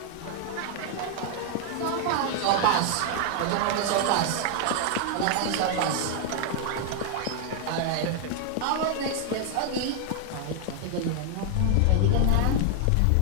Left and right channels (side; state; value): both; different; correlation 0.00